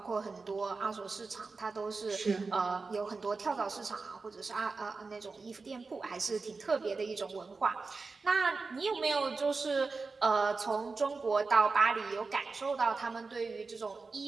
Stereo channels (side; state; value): left; quieter; 4.1 dB